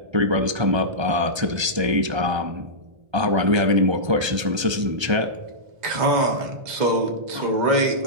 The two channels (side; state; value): left; late; 1.3 ms